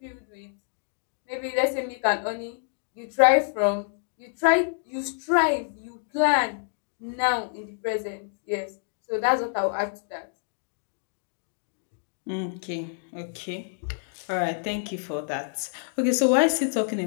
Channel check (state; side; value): silent; right; digital silence